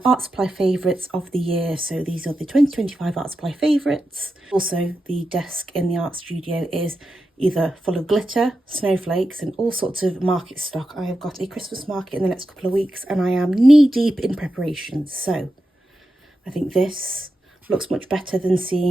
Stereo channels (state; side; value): normal; both; correlation 0.89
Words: art supply favourites of the year. So these are the 2025 art supply favourites. Also, the desk in the art studio is either full of glitter, snowflakes and all sorts of market stock. I have got a Christmas market in the next couple of weeks and I am knee deep in preparation. So I think this looks much better than